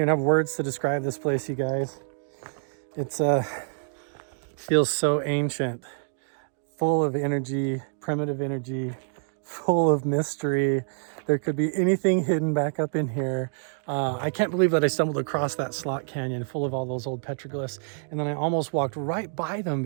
have words to describe this place, you guys. It's feels so ancient, full of energy, primitive energy, full of mystery. There could be anything hidden back up in here. I can't believe that I stumbled across that slot canyon full of all those old petroglyphs, and then I almost walked right by them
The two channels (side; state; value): left; silent; 60 dB below the other